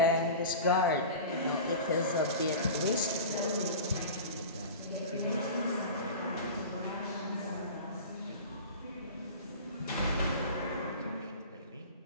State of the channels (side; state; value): both; inverted; correlation -0.34